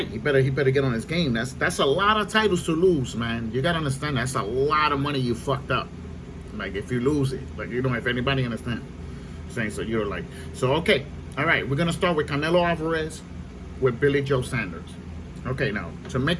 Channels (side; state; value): both; identical; correlation 1.00